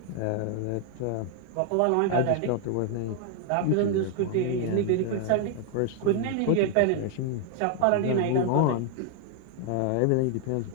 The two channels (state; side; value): different; both; correlation 0.00